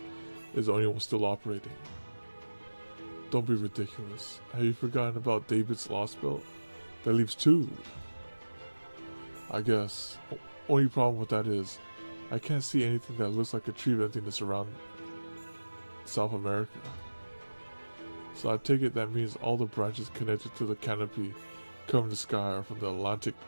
is the only one still operating? Don't be ridiculous. Have you forgotten about David's Lost Belt? That leaves two. I guess. Only problem with that is, I can't see anything that looks like a tree of emptiness around South America. So I take it that means all the branches connected to the canopy covering the sky are from the Atlantic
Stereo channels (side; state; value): both; inverted; correlation -1.00